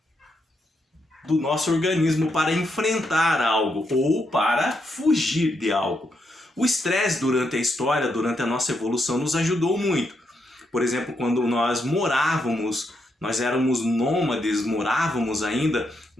do nosso organismo para enfrentar algo ou para fugir de algo. O estresse durante a história, durante a nossa evolução, nos ajudou muito. Por exemplo, quando nós éramos nômades, morávamos ainda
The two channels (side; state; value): both; normal; correlation 0.80